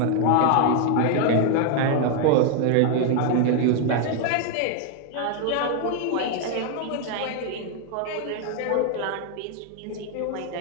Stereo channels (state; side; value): different; both; correlation 0.00